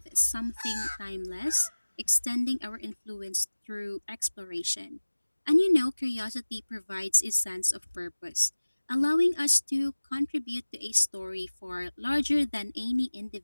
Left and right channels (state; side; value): inverted; both; correlation -1.00